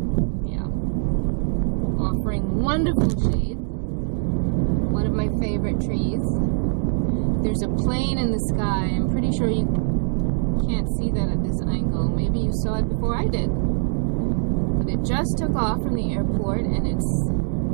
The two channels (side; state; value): left; silent; digital silence